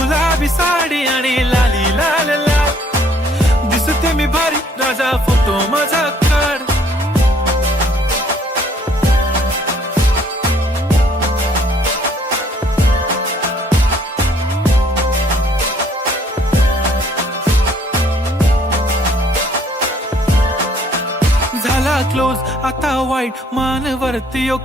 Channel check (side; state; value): both; normal; correlation 0.62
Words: साडी आणि लाली लाल लाल, दिसते मी भारी राजा फोटो माझा काढ. झाला क्लोज आता वाईट, मानवरती